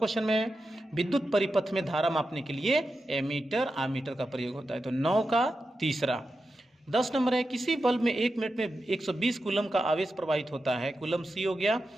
में विद्युत परिपथ में धारा मापने के लिए एमीटर आमीटर का प्रयोग होता है। तो 9 का तीसरा। 10 नंबर है, किसी बल्ब में 1 मिनट में 120 कूलम का आवेश प्रवाहित होता है। कूलम सी हो गया,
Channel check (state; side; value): normal; both; correlation 0.90